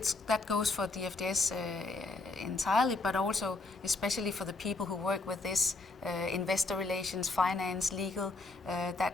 that goes for DFDS entirely, but also especially for the people who work with this, investor relations, finance, legal.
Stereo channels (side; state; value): right; quieter; 3.4 dB